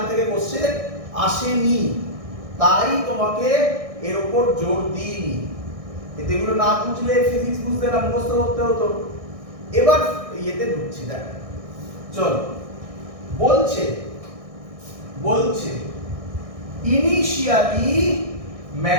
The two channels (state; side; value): late; left; 1.6 ms